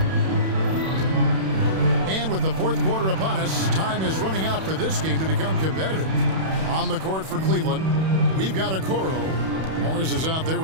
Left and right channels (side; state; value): left; late; 31 ms